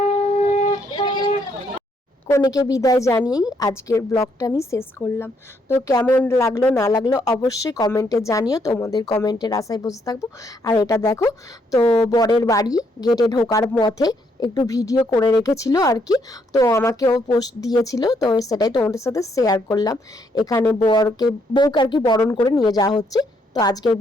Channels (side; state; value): both; normal; correlation 0.73